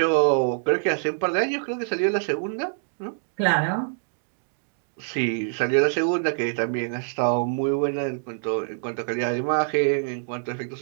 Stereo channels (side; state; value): left; silent; digital silence